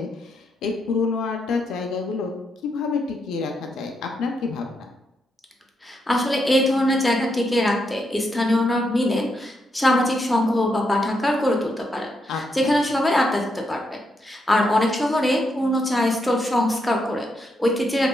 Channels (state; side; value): normal; both; correlation 0.80